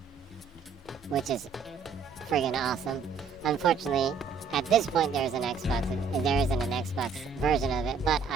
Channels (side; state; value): left; quieter; 5.4 dB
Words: Which is friggin' awesome. Unfortunately, at this point there isn't an Xbox version of it, but